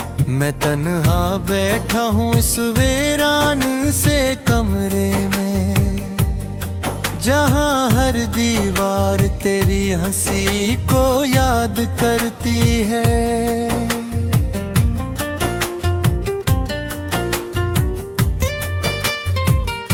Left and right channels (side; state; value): both; identical; correlation 1.00